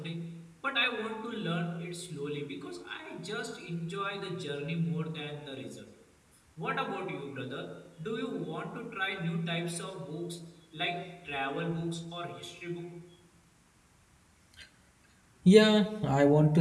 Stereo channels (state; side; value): identical; both; correlation 1.00